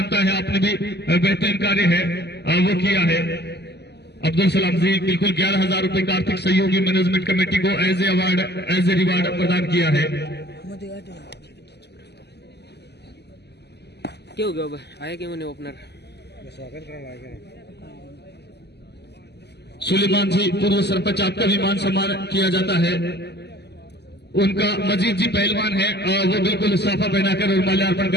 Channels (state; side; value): late; right; 0.49 ms